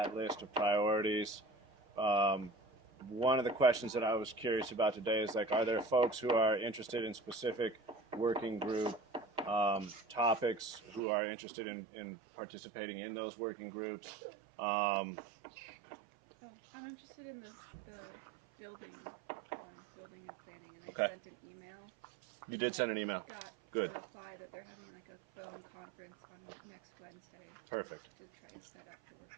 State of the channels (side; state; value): left; drops out; at 11.0 s